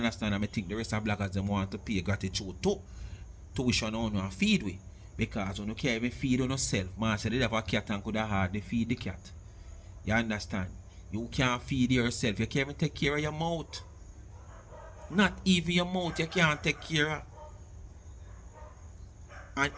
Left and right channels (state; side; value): identical; both; correlation 1.00